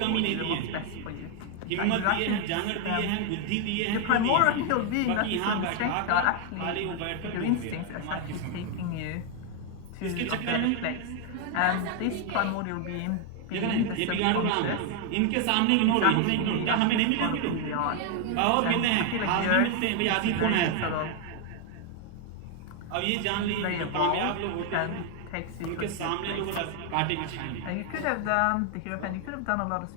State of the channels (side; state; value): both; different; correlation 0.00